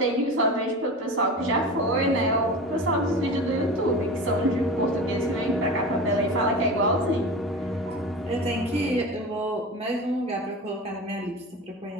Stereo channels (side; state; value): both; normal; correlation 0.31